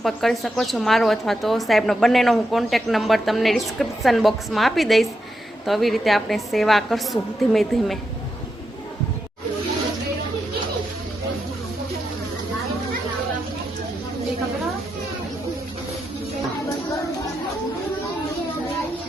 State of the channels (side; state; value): both; normal; correlation 0.84